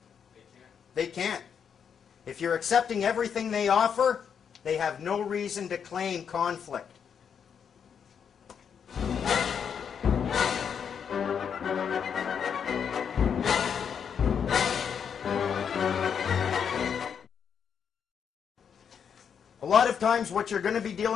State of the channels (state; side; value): quieter; right; 7.4 dB